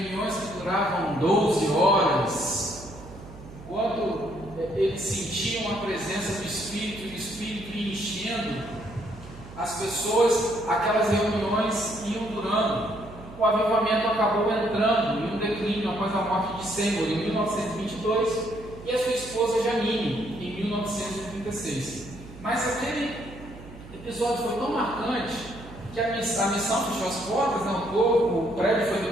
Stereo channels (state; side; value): noise; right; hum, 16 dB below the sound